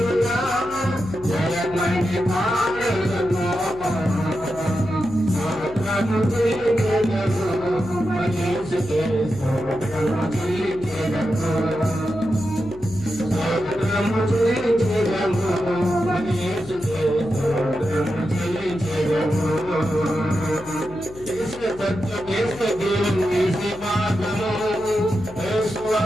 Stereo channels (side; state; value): left; noise; hum, 19 dB below the sound